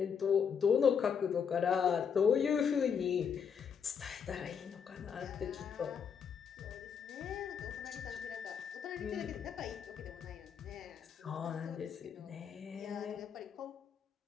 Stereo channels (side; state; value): right; quieter; 7.0 dB